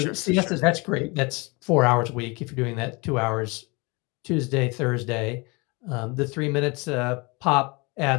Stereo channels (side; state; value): right; quieter; 27.7 dB